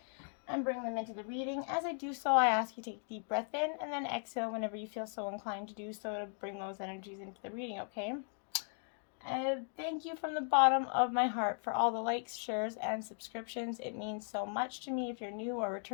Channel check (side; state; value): right; silent; 53 dB below the other